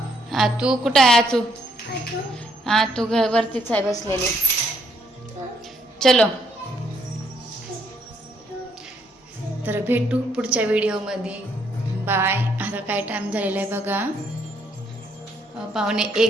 तू कुठं आहे? तू वरतीच आहे बसलेली. चलो तर भेटू पुढच्या व्हिडिओमध्ये. बाय. आता काय टाइम झालेला आहे बघा,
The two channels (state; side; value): normal; both; correlation 0.70